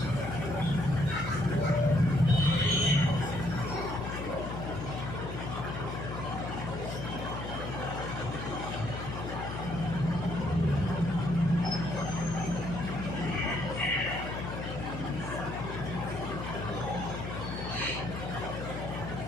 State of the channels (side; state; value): left; noise; hum, 7 dB below the sound